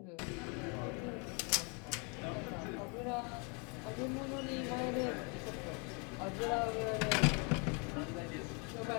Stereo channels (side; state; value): right; quieter; 33.9 dB